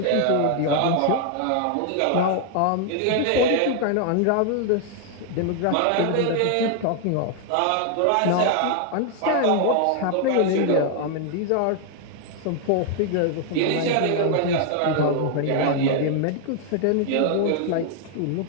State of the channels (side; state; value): both; different; correlation 0.00